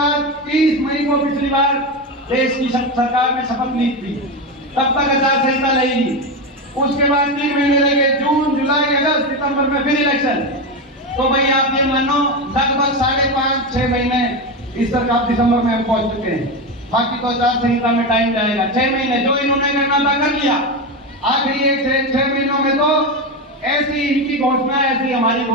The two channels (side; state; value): both; normal; correlation 0.15